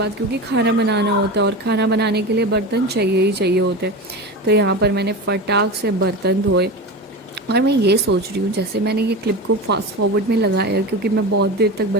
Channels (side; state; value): both; normal; correlation 0.26